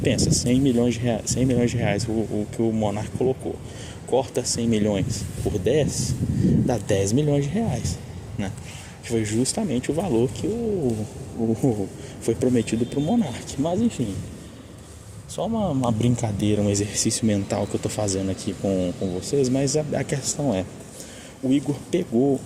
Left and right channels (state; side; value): identical; both; correlation 1.00